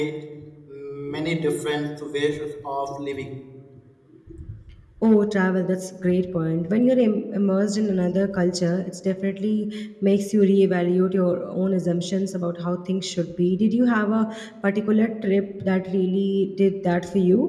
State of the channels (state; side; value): identical; both; correlation 1.00